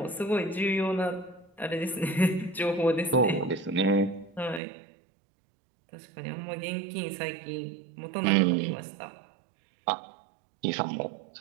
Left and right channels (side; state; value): left; drops out; at 4.6 s